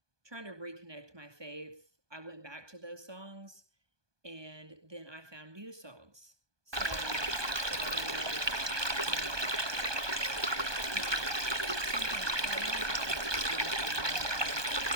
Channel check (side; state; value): left; late; 1.2 ms